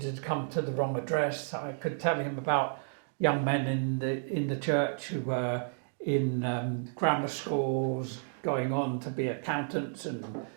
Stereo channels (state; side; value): silent; left; digital silence